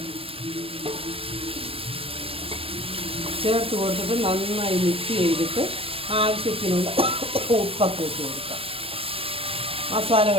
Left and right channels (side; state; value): left; late; 0.28 ms